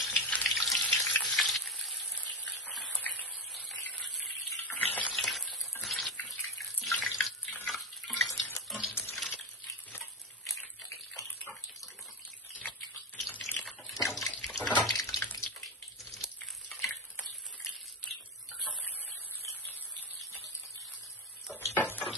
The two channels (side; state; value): both; normal; correlation 0.17